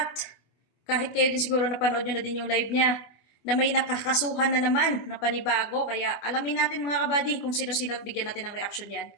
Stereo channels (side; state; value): right; late; 25 ms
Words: kahit kayo din siguro napanood nyo na din yung live niya na may nakakasuhan na naman na panibago, kaya alamin natin mga kabady kung sino-sino at bigyan natin ng reaksyon yan.